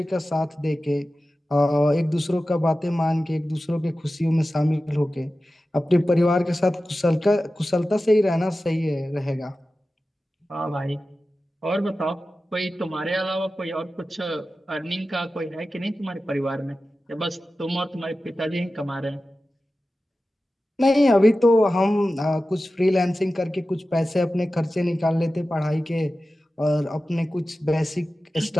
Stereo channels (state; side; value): normal; both; correlation 0.94